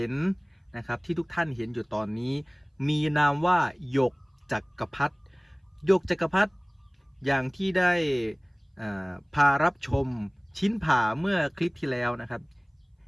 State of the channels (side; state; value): both; identical; correlation 1.00